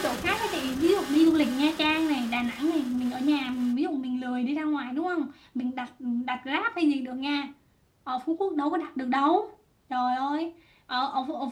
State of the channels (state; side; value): identical; both; correlation 1.00